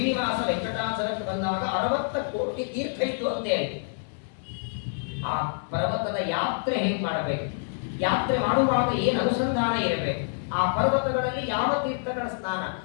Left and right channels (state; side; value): silent; right; 60 dB below the other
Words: ವೆಂಕಟಾಚಲಕ್ಕೆ ಬಂದಾಗ 60 ಕೋಟಿ ತೀರ್ಥ ಇತ್ತು ಅಂತೇಳಿ. ಆ ಪರ್ವತದ ಯಾತ್ರೆ ಹೇಗೆ ಮಾಡಬೇಕು, ಯಾತ್ರೆ ಮಾಡುವಾಗ ಏನು ಅನುಸಂಧಾನ ಇರಬೇಕು, ಆ ಪರ್ವತಗಳಲ್ಲಿ ಯಾವ ತೀರ್ಥಗಳ ಸ್ನಾನ,